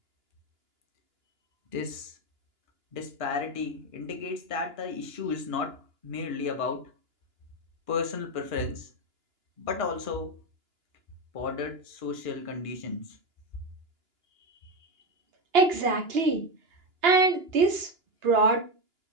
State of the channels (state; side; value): late; left; 2.9 ms